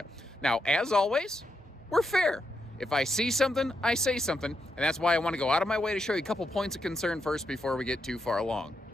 Now, as always, we're fair. If I see something, I say something, and that's why I want to go out of my way to show you a couple points of concern first before we get too far along.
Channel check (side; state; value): both; normal; correlation 0.82